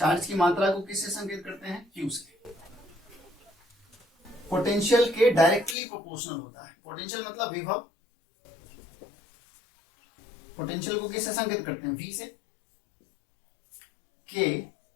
की मात्रा को किससे संकेत करते हैं? Q से। पोटेंशियल के डायरेक्टली प्रोपोर्शनल होता है। पोटेंशियल मतलब विभव, पोटेंशियल को किससे संकेत करते हैं? V से। के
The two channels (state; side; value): drops out; right; at 5.8 s